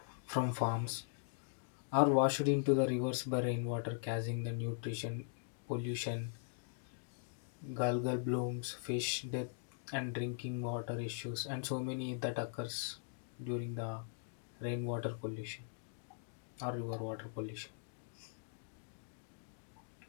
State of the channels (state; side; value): silent; right; digital silence